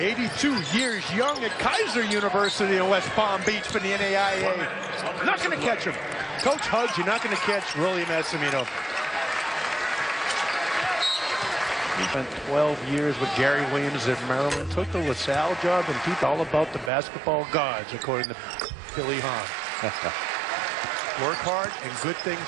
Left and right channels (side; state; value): left; drops out; at 16.9 s